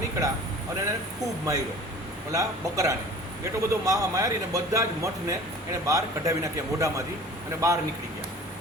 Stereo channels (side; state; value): both; normal; correlation 0.44